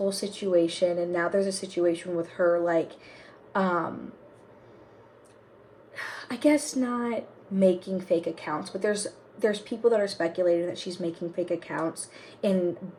situation, and now there's a situation with her, like, I guess not making fake accounts, but there's people that are speculating that she's making fake accounts and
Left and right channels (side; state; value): both; identical; correlation 1.00